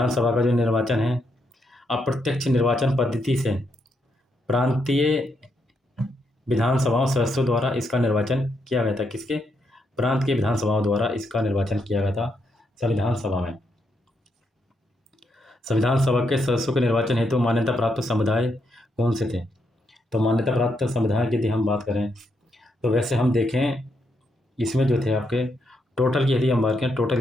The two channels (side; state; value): both; normal; correlation 0.78